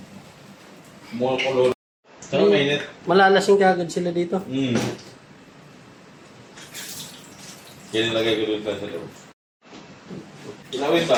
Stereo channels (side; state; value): both; identical; correlation 1.00